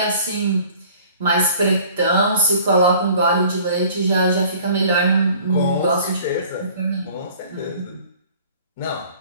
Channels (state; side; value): inverted; both; correlation -0.50